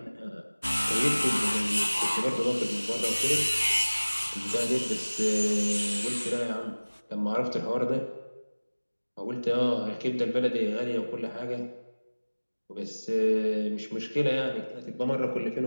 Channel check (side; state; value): both; inverted; correlation -1.00